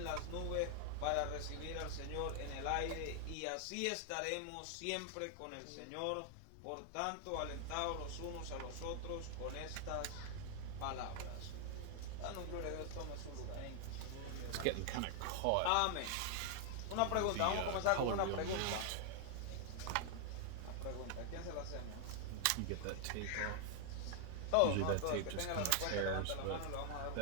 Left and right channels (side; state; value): both; different; correlation 0.00